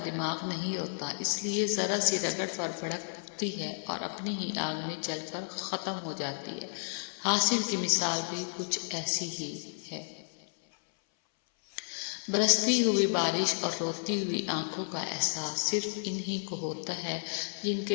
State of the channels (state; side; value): silent; right; 56 dB below the other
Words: دماغ نہیں ہوتا، اس لیے ذرا سی رگڑ پر بھڑکتی ہے اور اپنی ہی آگ میں جل کر ختم ہو جاتی ہے۔ حاصل کی مثال بھی کچھ ایسی ہی ہے۔ برستی ہوئی بارش اور روتی ہوئی آنکھوں کا احساس صرف انہی کو ہوتا ہے جن